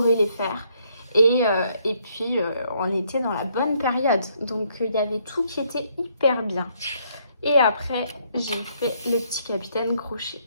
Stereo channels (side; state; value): both; inverted; correlation -0.70